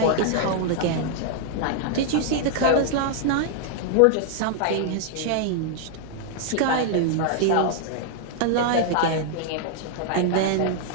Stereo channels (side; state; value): both; different; correlation -0.01